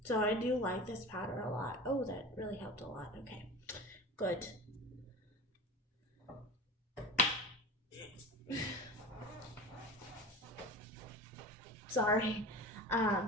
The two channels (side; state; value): both; normal; correlation 0.32